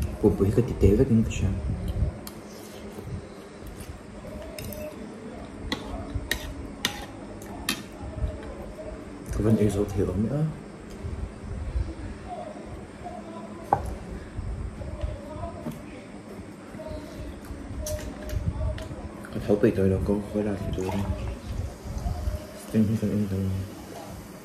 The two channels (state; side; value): identical; both; correlation 1.00